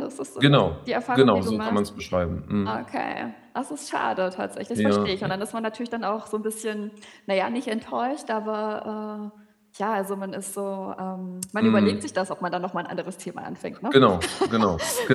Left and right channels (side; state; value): both; identical; correlation 1.00